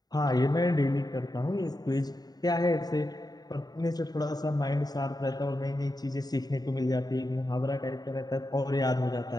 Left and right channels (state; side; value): late; right; 0.19 ms